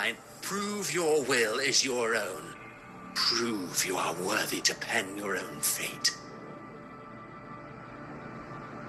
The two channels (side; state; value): both; identical; correlation 1.00